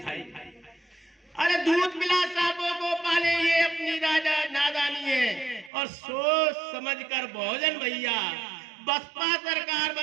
अरे दूध पिला सांपों को पाले, ये अपनी नादानी है। और सोच समझ कर बहुजन भैया बसपा सरकार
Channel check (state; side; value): drops out; left; at 5.7 s